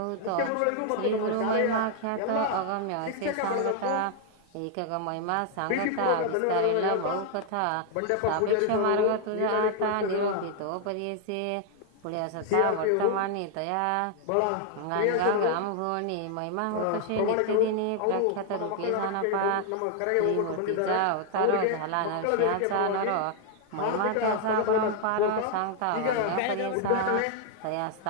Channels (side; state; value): both; different; correlation 0.00